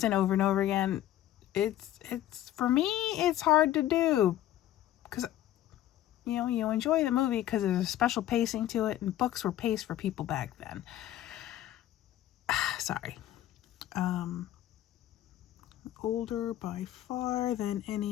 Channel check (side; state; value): right; quieter; 13.0 dB